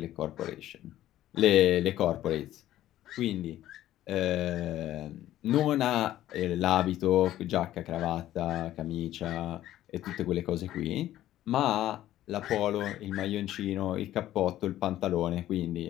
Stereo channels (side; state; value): right; quieter; 13.5 dB